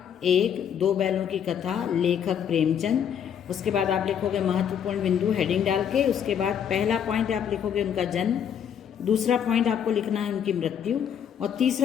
एक, दो बैलों की कथा, लेखक प्रेमचंद। उसके बाद आप लिखोगे महत्वपूर्ण बिंदु हेडिंग डाल के। उसके बाद पहला पॉइंट आप लिखोगे उनका जन्म, दूसरा पॉइंट आपको लिखना है उनकी मृत्यु और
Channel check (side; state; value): right; quieter; 8.6 dB